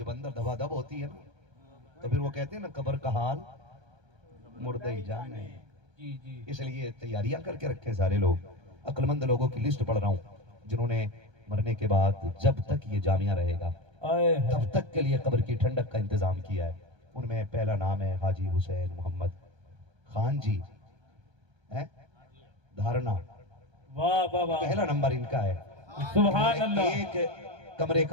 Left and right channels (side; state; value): left; late; 1.3 ms